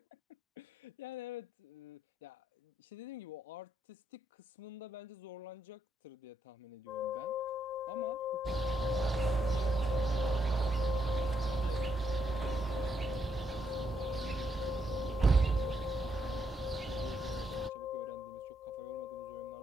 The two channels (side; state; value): both; normal; correlation 0.77